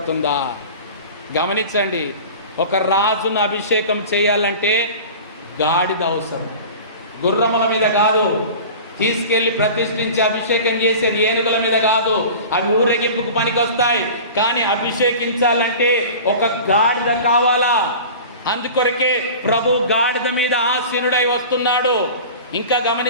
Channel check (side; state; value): both; inverted; correlation -0.37